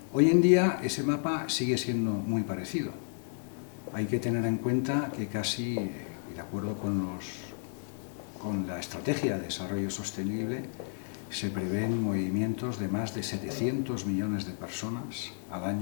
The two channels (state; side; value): silent; right; digital silence